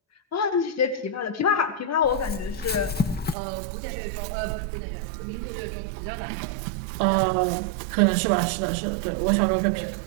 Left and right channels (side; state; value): left; drops out; at 3.4 s